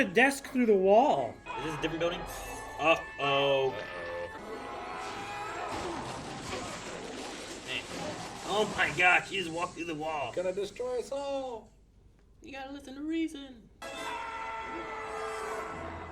desk through the wall. Is this a different building? Uh-oh. Man. Oh my gosh, he just walked through the wall. Gonna destroy us all. You gotta listen to reason.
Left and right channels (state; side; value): identical; both; correlation 1.00